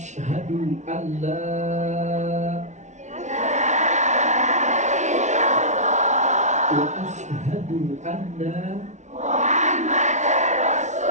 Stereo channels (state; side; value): late; left; 0.34 ms